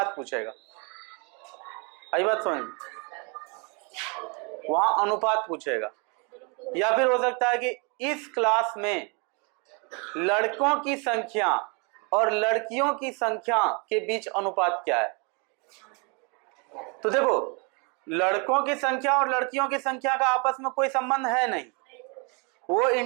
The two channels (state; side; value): quieter; left; 33.3 dB